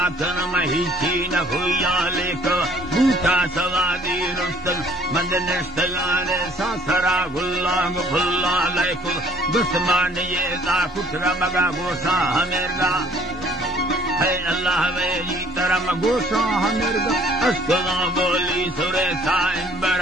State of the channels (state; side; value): normal; both; correlation 0.57